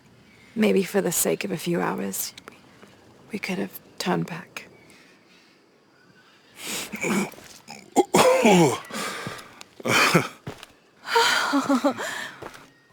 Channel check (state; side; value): identical; both; correlation 1.00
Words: maybe for the sake of a few hours, we could have turned back.